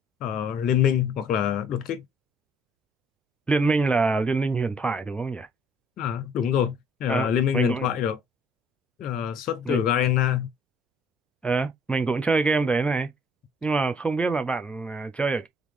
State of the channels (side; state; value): both; normal; correlation 0.59